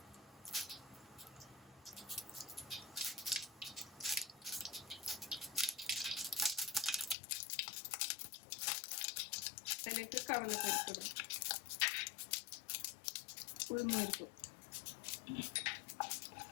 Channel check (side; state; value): right; drops out; at 7.2 s